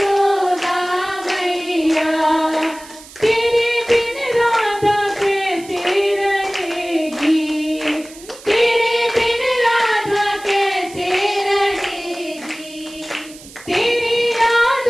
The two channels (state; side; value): noise; right; hiss, 19 dB below the sound